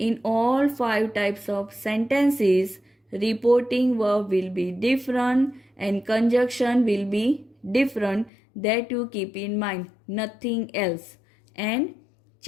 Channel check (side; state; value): right; drops out; at 8.3 s